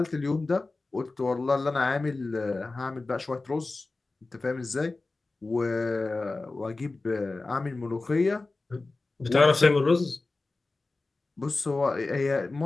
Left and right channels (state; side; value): quieter; right; 3.4 dB